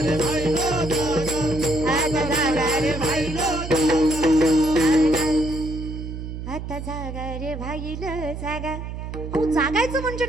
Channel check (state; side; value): noise; right; hum, 8 dB below the sound